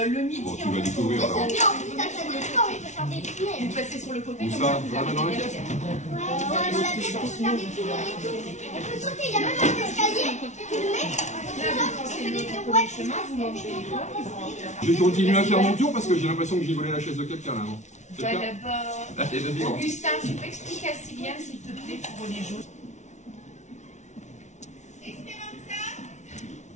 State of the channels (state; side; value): late; right; 0.34 ms